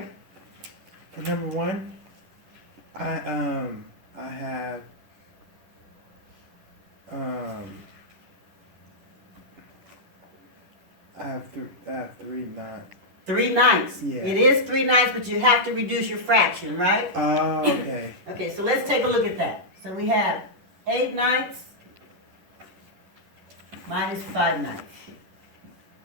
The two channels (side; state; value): left; late; 10 ms